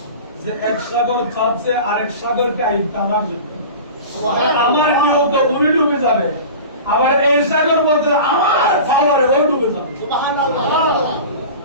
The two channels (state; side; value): inverted; both; correlation -0.35